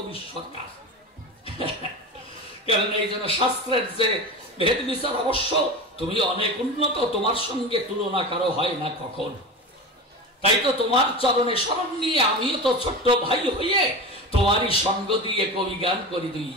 সরকার। কারণ এই জন্য শাস্ত্রের যে ভেদ বিচার অবশ্য তুমি অনেক উন্নত, তোমার সঙ্গে তুলনা কারো হয় না কখন। তাই তো তোমার চরণে শরণ নিয়ে আমিও তো ছোট্ট ভাই হয়ে তোমারই সঙ্গ দিয়ে কবি গান করি 2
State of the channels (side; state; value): both; normal; correlation 0.28